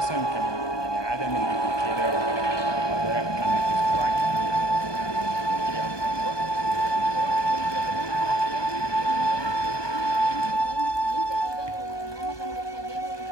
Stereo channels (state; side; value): late; right; 1.2 ms